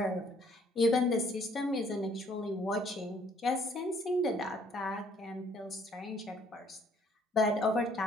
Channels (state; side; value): normal; both; correlation 0.62